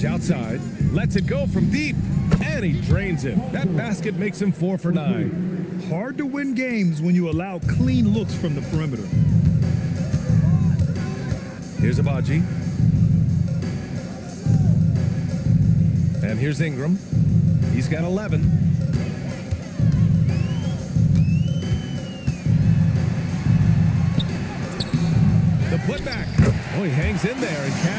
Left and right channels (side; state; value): both; identical; correlation 1.00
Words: outside. Lets it go from deep. And he drains it. That basket makes him 4 for 9. Hard to win games when you allow clean looks from the perimeter. Here's Abaji. And here's Ingram. He's got 11. The putback. Oh, he hangs in there and